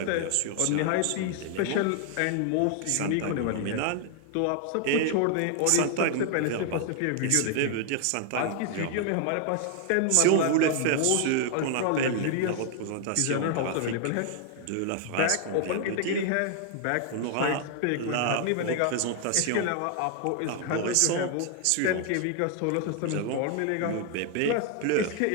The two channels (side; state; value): both; different; correlation 0.00